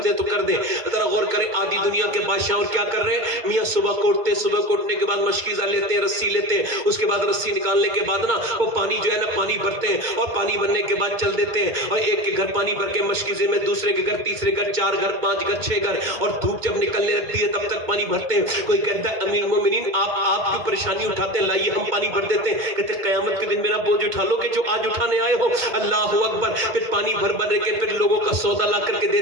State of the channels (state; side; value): late; left; 2.2 ms